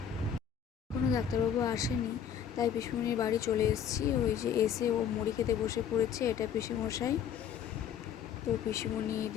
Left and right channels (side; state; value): right; quieter; 8.5 dB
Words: কোনো ডাক্তারবাবু আসেনি, তাই পিসমনির বাড়ি চলে এসেছি। ওই যে এসে ও মুড়ি খেতে বসে পড়েছে, এটা পিসিমশাই। তো পিসিমণি